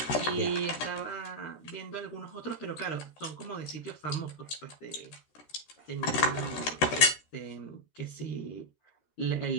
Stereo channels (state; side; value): late; right; 13 ms